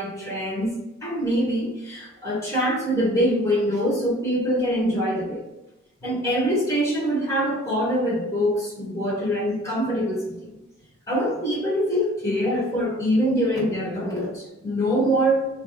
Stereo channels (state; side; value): normal; both; correlation 0.50